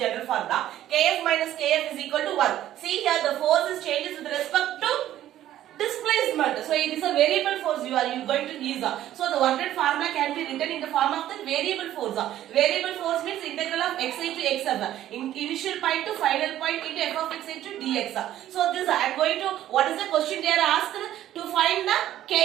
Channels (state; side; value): quieter; left; 12.7 dB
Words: formula. Kf minus Kf is equal to 1. See here the force is changes with respect to displacement. So it is a variable force you are going to use. So the work done formula can be written in the form of the variable force. Variable force means integral of xi to xf. Initial point to final point into f of x into dx. So this I am going to, what is the question they are asked? To find the